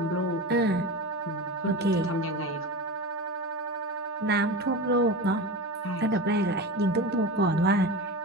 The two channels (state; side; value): normal; both; correlation 0.27